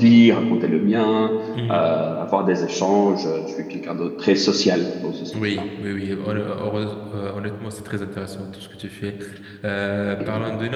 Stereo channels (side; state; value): both; identical; correlation 1.00